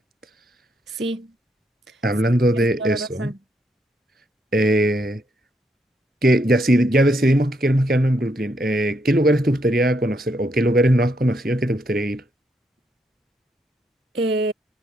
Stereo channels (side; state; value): both; normal; correlation 0.76